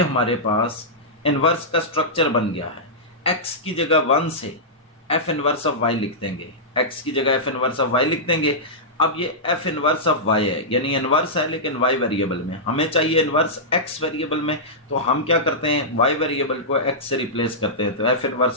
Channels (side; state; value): both; normal; correlation -0.13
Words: पास इनवर्स का स्ट्रक्चर बन गया है। x की जगह 1 से f इनवर्स ऑफ y लिख देंगे, x की जगह f इनवर्स ऑफ y लिख देंगे। अब ये f इनवर्स ऑफ y है, यानी इनवर्स है लेकिन y वेरिएबल में, हमें चाहिए इनवर्स x वेरिएबल में। तो हम क्या करते हैं, y वेरिएबल को x से रिप्लेस करते हैं, तो f